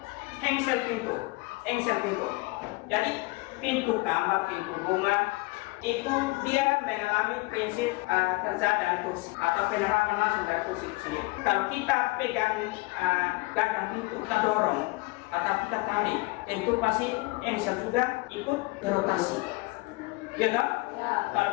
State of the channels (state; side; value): quieter; right; 23.9 dB